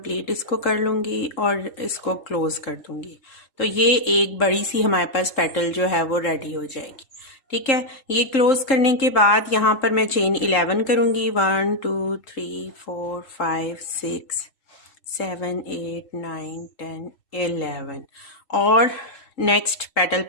इसको कर लूँगी और इसको क्लोज कर दूँगी। तो ये एक बड़ी सी हमारे पास पेटल जो है वो रेडी हो जाएगी। ठीक है, ये क्लोज करने के बाद यहाँ पर मैं चेन 11 करूँगी। 1 2 3 4 5 6 7 8 9 10 11 और नेक्स्ट पेटल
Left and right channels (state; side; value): late; right; 3.7 ms